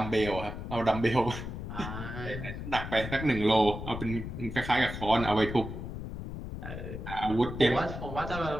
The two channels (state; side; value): noise; left; rumble, 7 dB below the sound